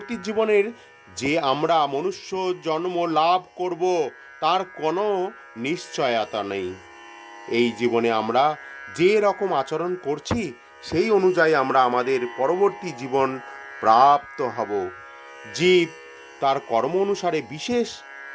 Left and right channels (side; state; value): both; identical; correlation 1.00